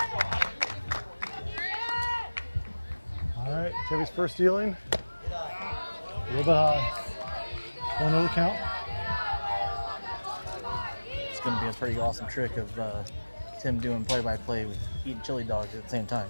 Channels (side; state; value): both; inverted; correlation -1.00